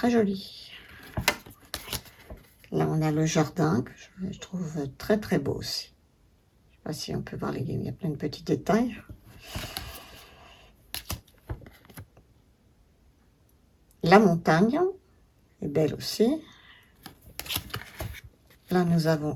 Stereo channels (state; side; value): identical; both; correlation 1.00